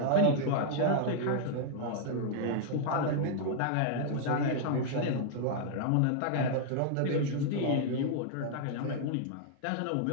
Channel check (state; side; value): different; both; correlation -0.01